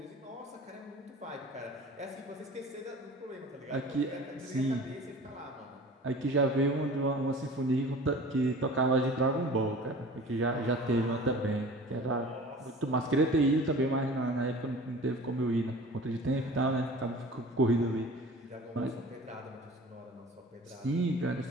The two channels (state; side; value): normal; both; correlation 0.42